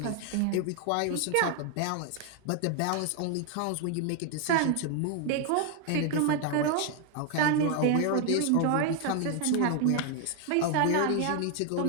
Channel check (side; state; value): both; different; correlation 0.00